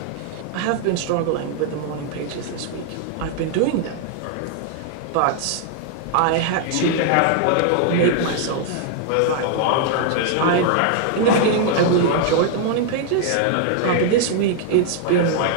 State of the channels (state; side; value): different; both; correlation 0.00